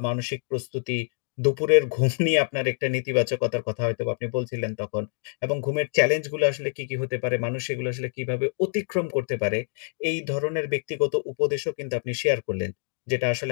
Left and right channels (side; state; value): right; silent; 61 dB below the other